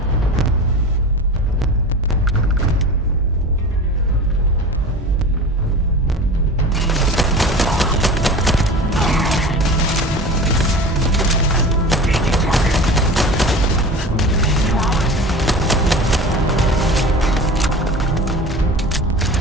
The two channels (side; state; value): both; normal; correlation 0.35